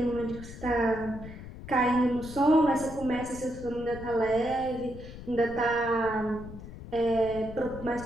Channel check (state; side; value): noise; left; rumble, 13 dB below the sound